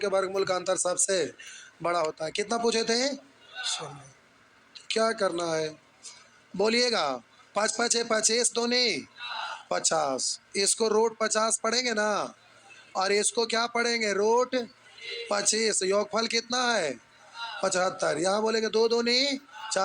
वर्गमूल का अंतर सबसे बड़ा होता है। कितना पूछे थे? 16। क्या करना है बोलिएगा। 5 5 25 दूनी 50, इसको रूट 50 पढ़ेंगे ना, और इसको क्या पढ़ेंगे, रूट 25। योगफल कितना है? 75। यहाँ बोलेंगे 2 दूनी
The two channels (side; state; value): both; identical; correlation 1.00